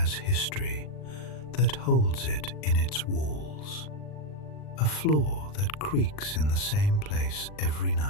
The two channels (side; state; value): right; late; 39 ms